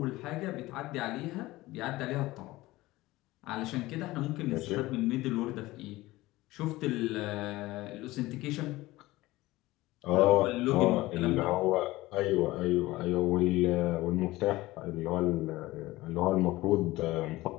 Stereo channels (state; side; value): quieter; right; 18.7 dB